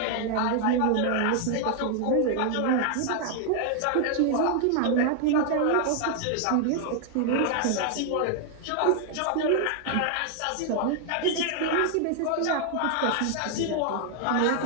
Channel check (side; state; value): both; different; correlation 0.00